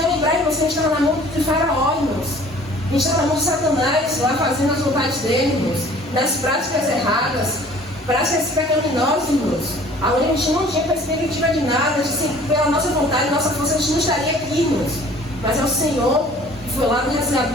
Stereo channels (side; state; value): both; normal; correlation 0.51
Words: lembrar, irmãos, que a gente estava na mão de Faraó, irmãos. A gente estava na mão de Satanás, lá fazendo as vontades dele, irmãos. Nas práticas erradas, práticas pecaminosas, irmãos. Aonde a gente não tinha perspectiva de nada, pela nossa vontade, nossa força, a gente não estaria aqui, irmãos. Mas é o Senhor que foi lá no